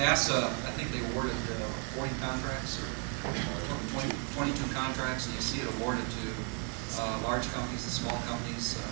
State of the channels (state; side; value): quieter; left; 39.8 dB